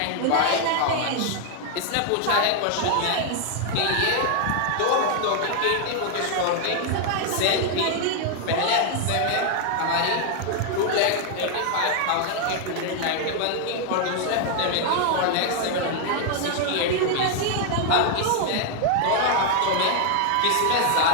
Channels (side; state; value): both; different; correlation 0.00